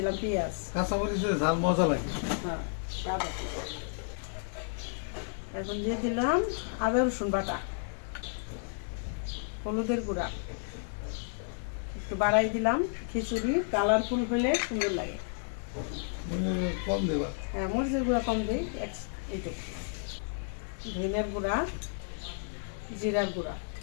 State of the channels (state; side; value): silent; right; 56 dB below the other